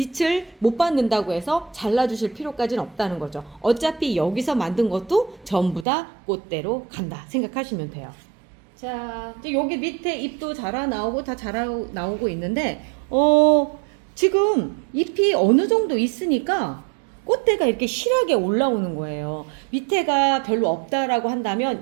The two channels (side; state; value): left; drops out; at 5.9 s